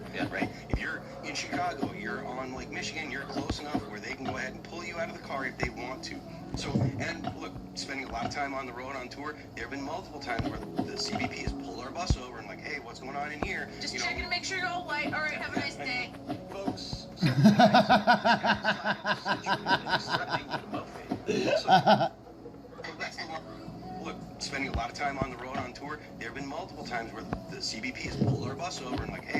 right? If you're in Chicago, you're on Lake Michigan, you're close enough where they can go ahead and pull you out of the car if they want to. So, and look, spending a lot of time on the road on tour, there have been multiple times where the CBP has pulled our bus over and like, hey, what's going on in here? Just checking to make sure you're all white. All right, have a nice day. Folks, look, spending a lot of time on the road on tour, there have been multiple times where the CBP has pulled our bus over and like,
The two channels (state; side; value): identical; both; correlation 1.00